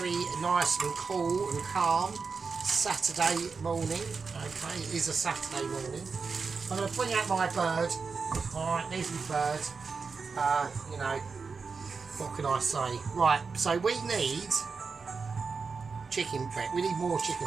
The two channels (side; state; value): left; quieter; 4.9 dB